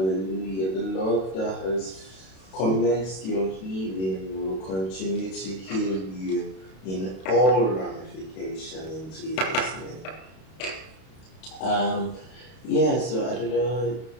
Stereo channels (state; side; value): late; right; 32 ms